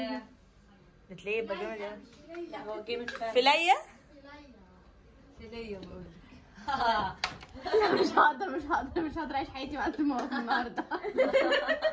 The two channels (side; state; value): both; identical; correlation 1.00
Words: بتلاقيه يبقى جامد اوي. لا هو جامد فعلا. فليه؟ فلية بقول لك. لا مش هقدر اعيش حياتي مع الطماطم النهارده.